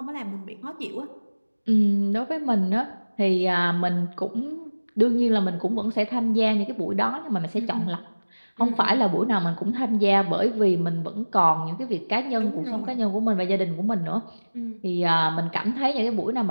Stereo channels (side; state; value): both; inverted; correlation -1.00